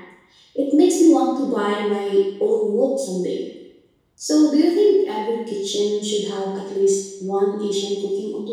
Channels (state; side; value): identical; both; correlation 1.00